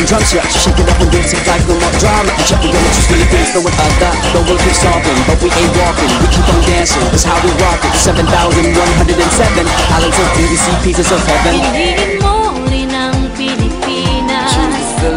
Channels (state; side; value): identical; both; correlation 1.00